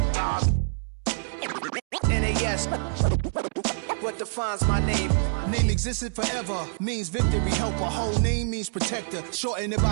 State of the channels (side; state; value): left; silent; digital silence